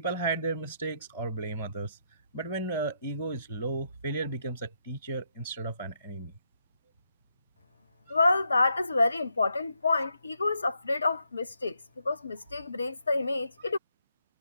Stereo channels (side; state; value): both; inverted; correlation -0.78